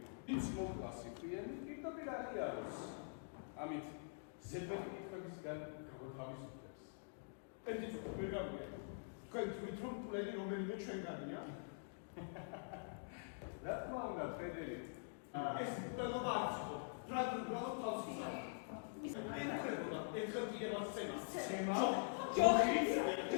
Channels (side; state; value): right; silent; digital silence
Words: ის მოკლასი პირი პირდაპირ აღიაროს. ამით ზედმეტი კითხვებისგან გამოთავისუფლებს. ერთი ცოტა ვერ გავიგე. თქვენ თვით რომ პლენი რომელიმე ჩვენგანია? რა თქმა უნდა, ფრედერიკ. ეს პლენობა არ იყო. ფრანგული გრამატ თავს ისა. ინკრებულა, ერთხელ იგებას ცემა. ცემა? ჯოხი?